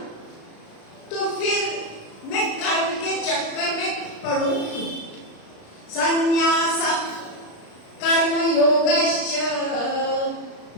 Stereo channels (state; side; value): late; right; 36 ms